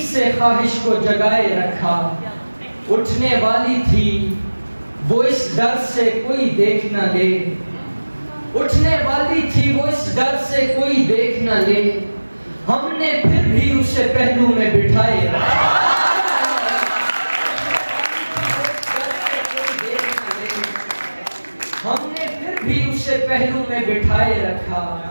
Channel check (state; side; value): inverted; both; correlation -1.00